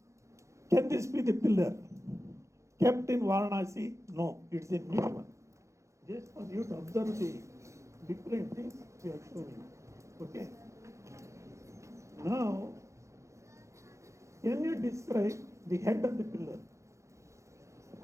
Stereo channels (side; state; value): left; late; 0.14 ms